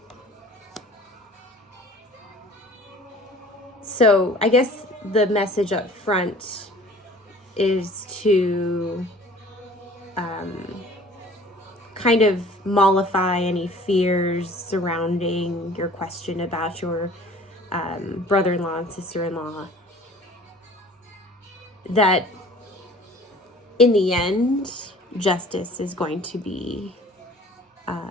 So I guess the message up front is to kind of mollify any fears surrounding your question about your brother-in-law and sister-in-law. That in the end, justice is going to be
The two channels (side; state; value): both; normal; correlation 0.48